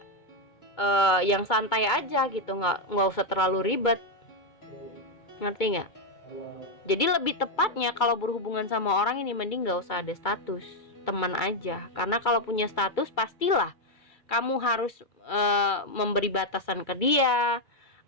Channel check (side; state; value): right; late; 2.2 ms